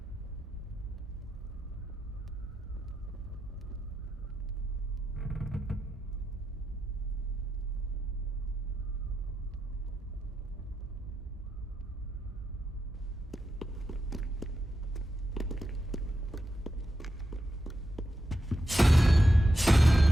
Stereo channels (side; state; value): both; normal; correlation 0.87